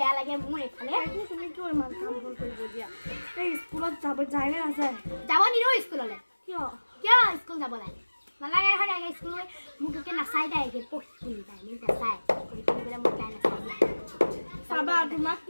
লাগে মোৰ এইফালে তুমি কিয় ইমান কাম ভুল কৰিব দিয়া এই স্কুলত যায় নে নাযায় যাব নিদিওঁ স্কুললৈ কিয় স্কুল যাব লাগে নালাগে এখন স্কুল মোক একে নাচাই তাই একে পঢ়ি তাই মোক নাচাই পঢ়ি পেলাই মোক তাই নাচাই চাবা তোমাক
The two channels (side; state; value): both; inverted; correlation -1.00